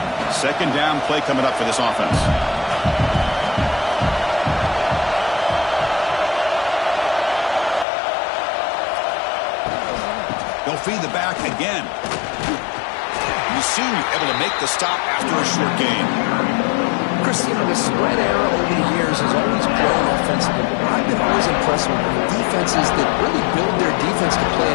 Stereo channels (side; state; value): right; drops out; at 7.9 s